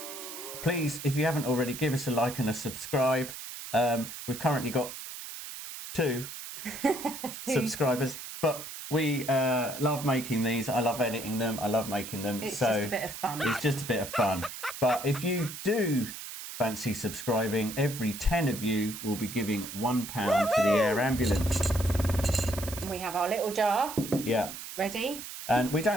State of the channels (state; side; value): noise; right; hiss, 10 dB below the sound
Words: Please, if you haven't already, give us a like and a subscribe. We've currently got two subscribers, but we love making these. I love editing them. I love making them. It's just a bit of fun. It's just a bit of fun. But if you do fancy subscribing, every 10 of you will be giving £1 to the air ambulance. We have our little jar. Yeah. Ready? And we